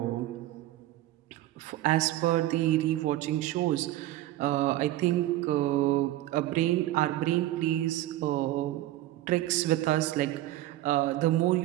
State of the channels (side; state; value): left; quieter; 15.3 dB